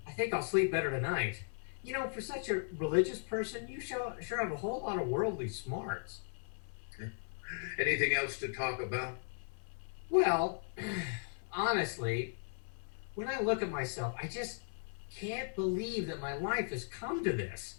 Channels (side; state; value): right; silent; digital silence